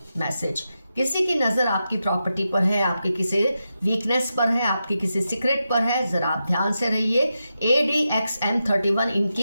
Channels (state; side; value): inverted; both; correlation -0.88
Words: मैसेज। किसी की नज़र आपकी प्रॉपर्टी पर है, आपके किसी वीकनेस पर है, आपके किसी सीक्रेट पर है, जरा आप ध्यान से रहिए। ADXM31